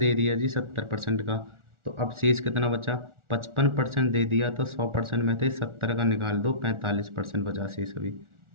दिया जी 70% का। तो अब शेष कितना बचा, 55% दे दिया, तो 100% में से 70 का निकाल दो, 45% बचा शेष अभी,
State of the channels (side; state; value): left; late; 1.4 ms